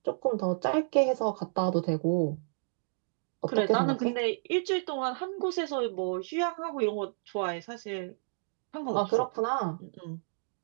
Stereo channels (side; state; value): left; silent; digital silence